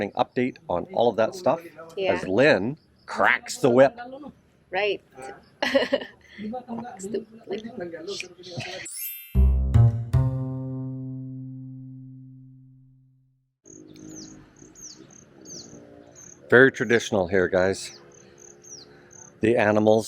update on all of that stuff as Lynn cracks the whip. Right. Very traditional here, guys. The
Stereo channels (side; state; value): both; identical; correlation 1.00